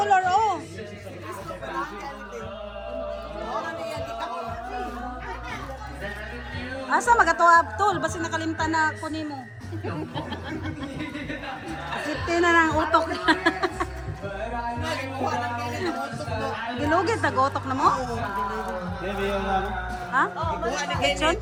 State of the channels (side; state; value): both; identical; correlation 1.00